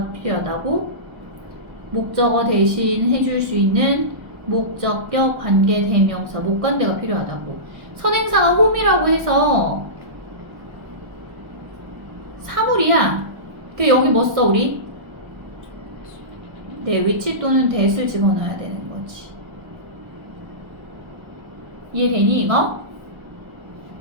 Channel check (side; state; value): left; late; 1.6 ms